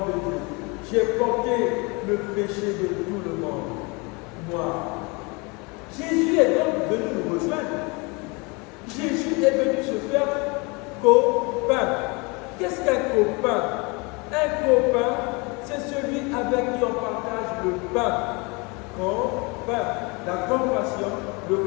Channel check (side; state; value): right; quieter; 28.5 dB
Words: de Dieu, j'ai porté le péché de tout le monde. Moi, Jésus est donc venu nous rejoindre. Jésus est venu se faire copain. Qu'est-ce qu'un copain? Un copain, c'est celui avec qui on partage le pain. Copain, la compassion, le